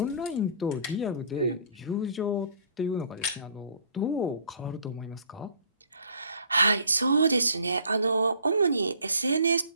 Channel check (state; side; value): inverted; both; correlation -0.53